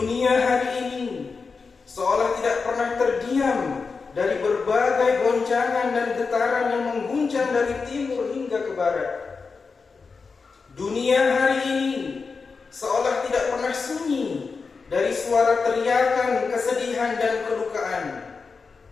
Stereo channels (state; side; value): quieter; right; 4.8 dB